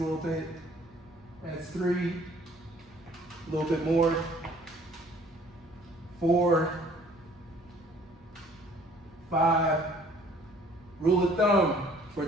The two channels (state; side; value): normal; both; correlation 0.56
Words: a little bit. That's 3, a little bit more, 4, 5. Rule of thumb for